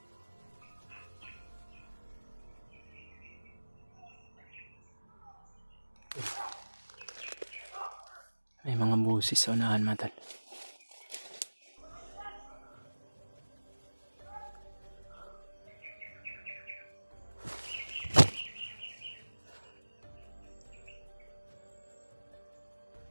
May mga busis sa unahan mga tol.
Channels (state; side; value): inverted; both; correlation -1.00